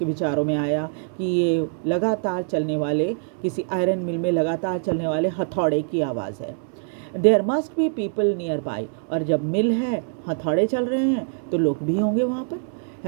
विचारों में आया कि ये लगातार चलने वाले, किसी आयरन मिल में लगातार चलने वाले हथौड़े की आवाज़ है। There must be people nearby, और जब मिल है, हथौड़े चल रहे हैं, तो लोग भी होंगे वहाँ पर,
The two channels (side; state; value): left; silent; digital silence